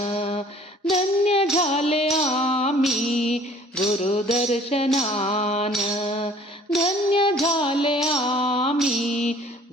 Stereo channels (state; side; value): normal; both; correlation 0.53